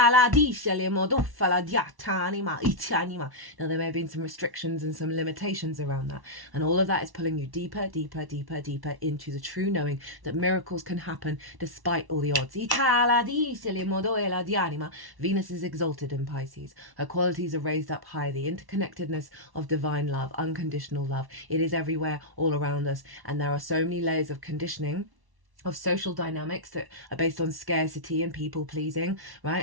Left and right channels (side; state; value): left; late; 1.1 ms